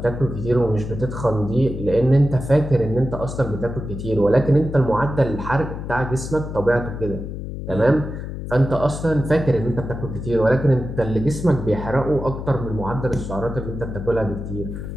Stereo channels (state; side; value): noise; left; hum, 7 dB below the sound